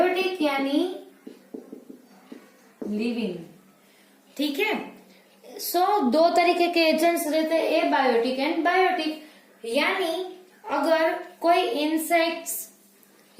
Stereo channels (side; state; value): both; identical; correlation 1.00